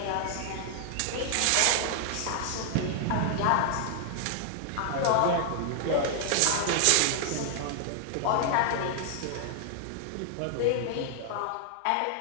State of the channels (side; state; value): both; different; correlation 0.00